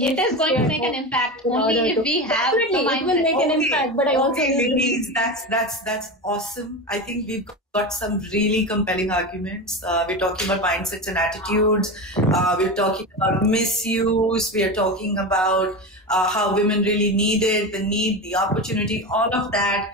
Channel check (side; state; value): both; normal; correlation 0.22